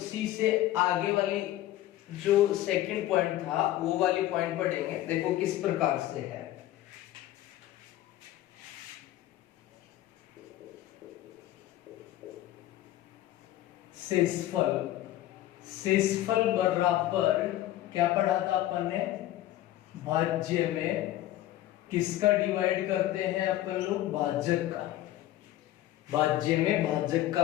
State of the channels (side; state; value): right; quieter; 14.3 dB